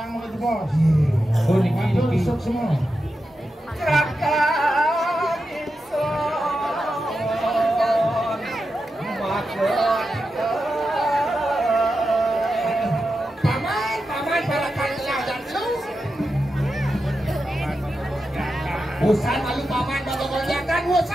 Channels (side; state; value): both; normal; correlation 0.89